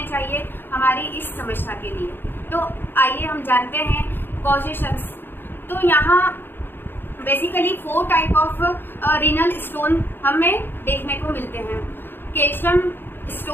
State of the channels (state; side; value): late; right; 0.10 ms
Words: चाहिए हमारी इस समस्या के लिए। तो आइए हम जानते हैं कॉजेशंस। तो यहाँ basically 4 type of renal stone हमें देखने को मिलते हैं। कैल्शियम